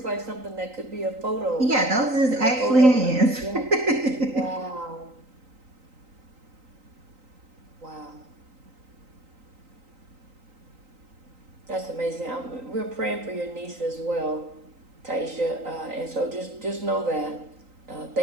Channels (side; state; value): left; late; 3.9 ms